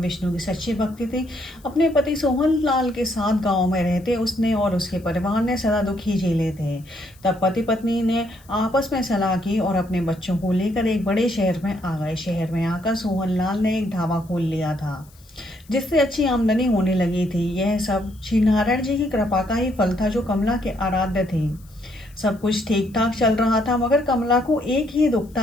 विष्णु की सच्ची भक्ति थी। अपने पति सोहन लाल के साथ गांव में रहते उसने और उसके परिवार ने सदा दुख ही झेले थे। तब पति पत्नी ने आपस में सलाह की और अपने बच्चों को लेकर एक बड़े शहर में आ गए। शहर में आकर सोहन लाल ने एक ढाबा खोल लिया था, जिससे अच्छी आमदनी होने लगी थी। यह सब श्री नारायण जी की कृपा का ही फल था, जो कमला के आराध्य थे। सब कुछ ठीक ठाक चल रहा था, मगर कमला को एक ही दुख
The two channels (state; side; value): noise; left; hiss, 28 dB below the sound